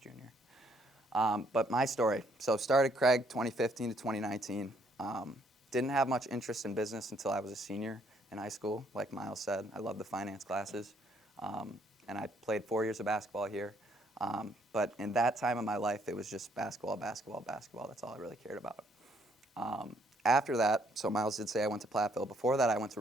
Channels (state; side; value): normal; both; correlation 0.68